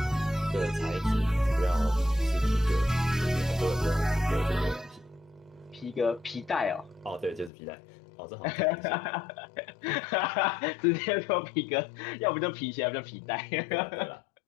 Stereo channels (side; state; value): right; drops out; at 7.5 s